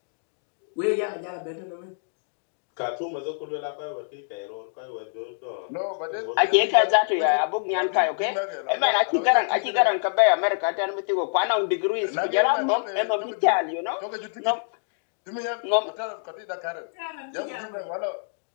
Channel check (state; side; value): silent; right; digital silence